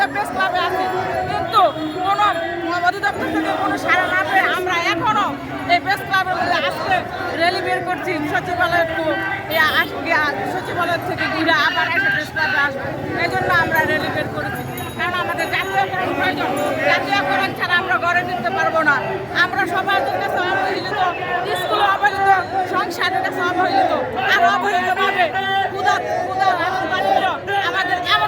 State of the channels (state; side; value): identical; both; correlation 1.00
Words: প্রেস ক্লাবে আছি, কিন্তু কোনো অধিদপ্তর থেকে কোনো সাড়া না পেয়ে আমরা এখনো এই প্রেস ক্লাবের মধ্যে আজকে র্যালি বের করছি। সচিবালয় থেকে ঘিরে আবার একটা প্রেস ক্লাবে আসবো, এই জন্য আমরা র্যালি বের করেছি। কারণ আমাদের জাতীয়করণ প্রয়োজন। জাতীয়করণ ছাড়া আমরা গড়ে তুলতে পারবো না। আমরা সমাজের কাছে অবহেলিত, স্কুলে অবহেলিত, সংসারের কাছে অবহেলিত, আর অবহেলিতভাবে আমাদের